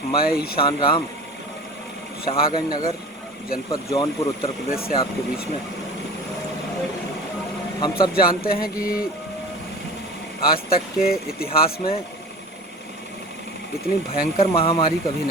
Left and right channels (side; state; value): both; normal; correlation 0.38